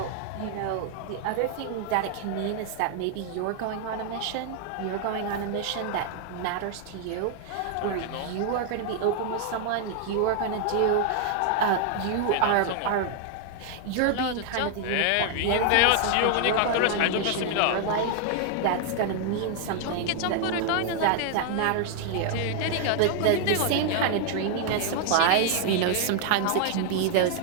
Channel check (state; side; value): different; both; correlation 0.00